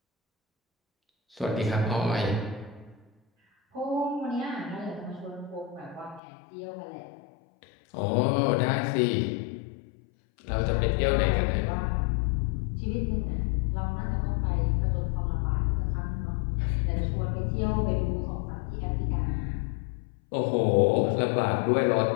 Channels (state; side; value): drops out; right; at 6.2 s